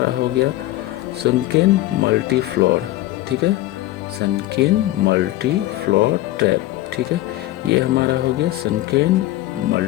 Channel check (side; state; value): right; quieter; 16.4 dB